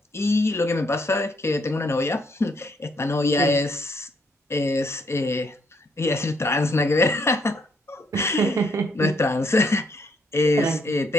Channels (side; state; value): both; normal; correlation 0.72